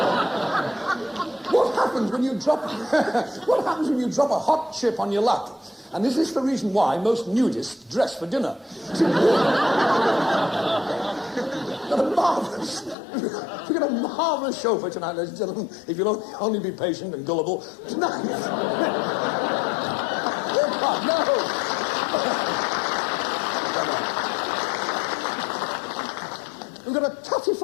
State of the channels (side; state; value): right; drops out; at 13.0 s